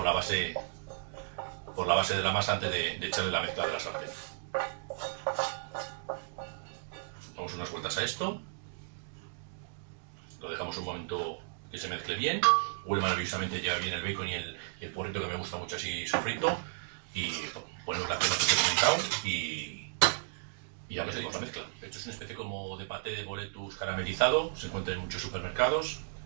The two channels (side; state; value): left; silent; digital silence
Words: la base de la masa antes de echarle la mezcla de la sartén. Damos unas vueltas a esto, lo dejamos un momento que se mezcle bien, huele maravillosamente, llega bien el bacon y el porrito que me gusta mucho así sofrito, y ponemos la crema que he comentado y ya metemos la mezcla. Esto es una especie como de paté de boletus caramelizado, se encuentra en muchos supermercados.